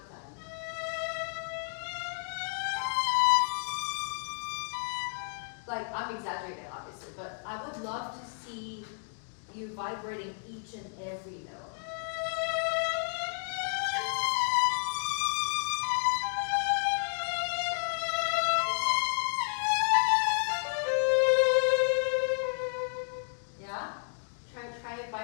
time. Like, I'm exaggerating obviously, but I would love to see you vibrating each and every note. Yeah? Try it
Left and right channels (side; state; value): right; silent; 57 dB below the other